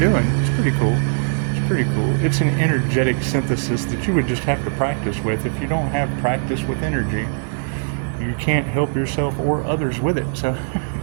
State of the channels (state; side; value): silent; left; digital silence